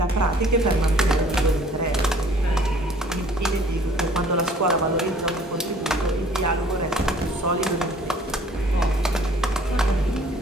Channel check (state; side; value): normal; both; correlation 0.55